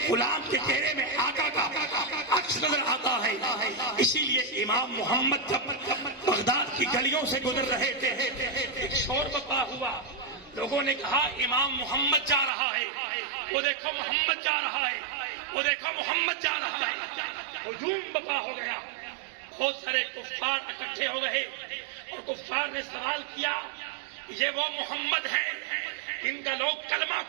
غلام کے چہرے میں آقا کا عکس نظر آتا ہے. اسی لیے امام محمد جب بغداد کی گلیوں سے گزر رہے تھے ایک شور بپا ہوا. لوگوں نے کہا امام محمد جا رہا ہے, وہ دیکھو محمد جا رہا ہے, وہ دیکھو محمد جا رہا ہے. ہجوم بپا ہو گیا. بہت سارے کفار اکٹھے ہو گئے اور کفار نے سوال کیا یہ وہ محمد ہیں ان کا لوگ کلمہ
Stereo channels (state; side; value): drops out; left; at 12.5 s